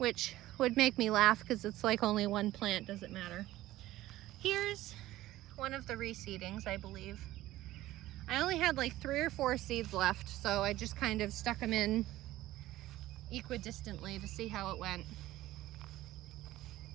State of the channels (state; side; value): quieter; left; 15.9 dB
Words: would make me laugh because it's like only 1 plant, doesn't matter. Here's one of the reseedings, I believe. I only had like 3 or 4 seeds left, so I just kind of stuck them in equidistantly to see how it went.